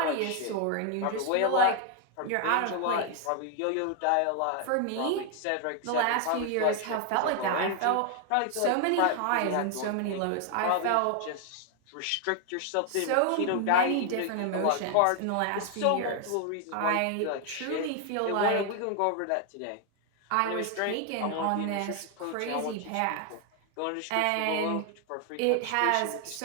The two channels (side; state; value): both; different; correlation 0.00